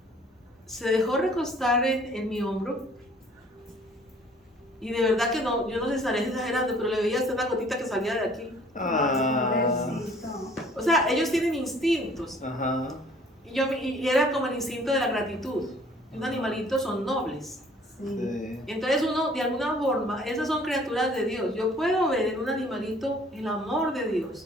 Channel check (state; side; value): normal; both; correlation 0.56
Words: se dejó recostar en mi hombro. Y de verdad que no, yo no les estaré exagerando, pero le veía hasta una gotita que salía de aquí. Pobrecito. O sea, ellos tienen instintos. Ajá. Y era como el instinto de la gratitud. Un animalito son nobles. Sí. Entonces uno, de alguna forma, esas son criaturas de Dios. Yo puedo ver en un animalito el amor de